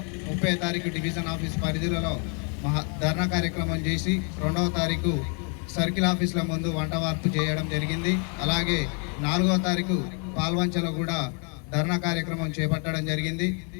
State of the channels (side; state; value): right; quieter; 38.0 dB